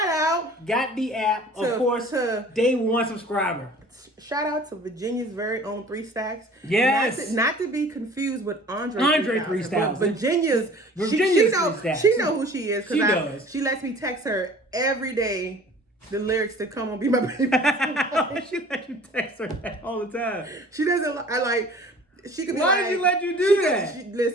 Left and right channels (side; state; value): both; normal; correlation 0.47